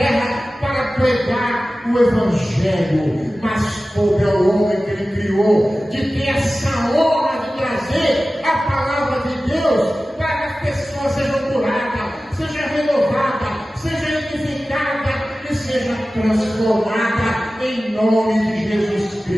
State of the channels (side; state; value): both; normal; correlation 0.96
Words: para pregar o Evangelho, mas coube ao homem que ele criou de ter essa honra de trazer a palavra de Deus para que as pessoas sejam curadas, sejam renovadas, sejam edificadas e sejam transformadas em nome de Jesus